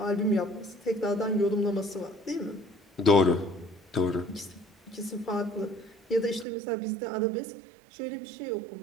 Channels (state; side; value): drops out; left; at 6.5 s